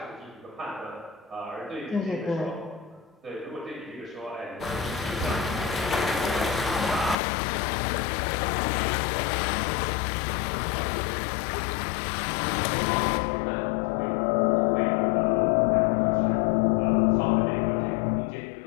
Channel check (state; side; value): drops out; right; at 7.2 s